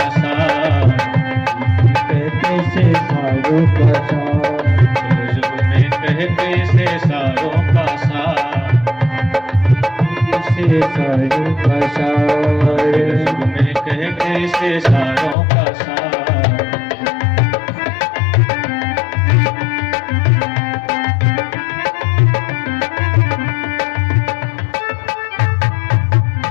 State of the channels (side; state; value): right; drops out; at 15.4 s